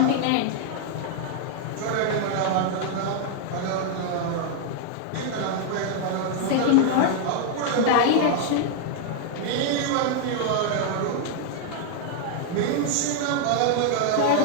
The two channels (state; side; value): different; both; correlation 0.00